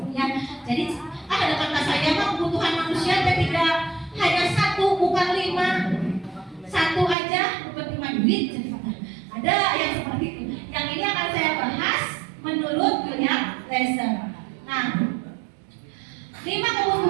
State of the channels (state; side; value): drops out; left; at 7.2 s